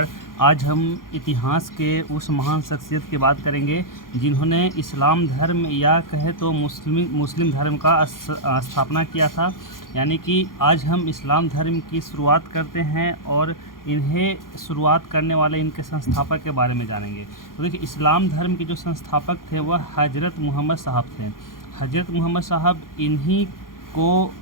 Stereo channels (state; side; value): late; right; 0.91 ms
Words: आज हम इतिहास के उस महान शख्सियत की बात करेंगे जिन्होंने इस्लाम धर्म या कहे तो मुस्लिम धर्म का स्थापना किया था। यानी कि आज हम इस्लाम धर्म की शुरुआत करते हैं और इन्हें शुरुआत करने वाले इनके संस्थापक के बारे में जानेंगे। तो देखिए, इस्लाम धर्म के जो संस्थापक थे वह हज़रत मोहम्मद साहब थे। हज़रत मोहम्मद साहब इन्हीं को